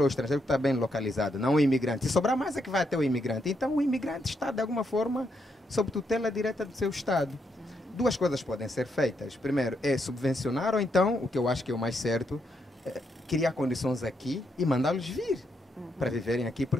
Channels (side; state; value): both; normal; correlation 0.79